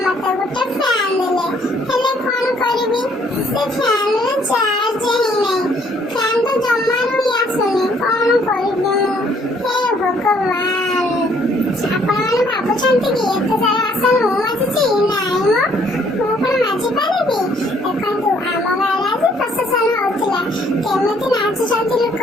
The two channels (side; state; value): both; normal; correlation 0.64